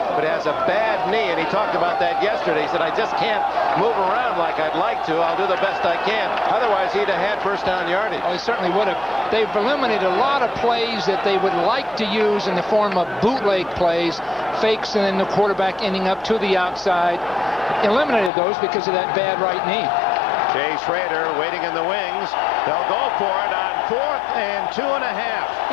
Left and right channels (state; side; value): drops out; right; at 18.3 s